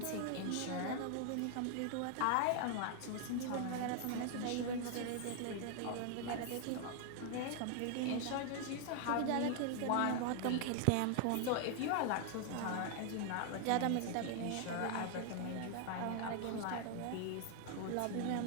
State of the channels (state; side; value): different; both; correlation 0.00